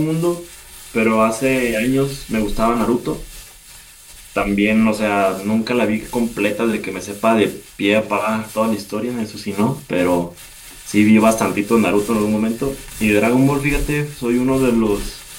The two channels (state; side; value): identical; both; correlation 1.00